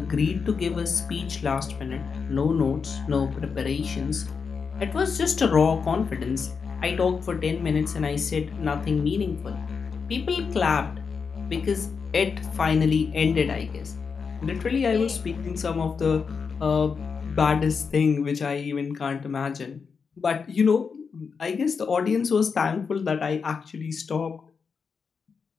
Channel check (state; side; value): quieter; right; 5.6 dB